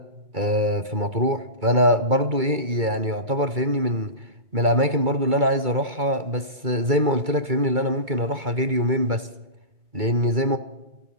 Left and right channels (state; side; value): late; left; 2.3 ms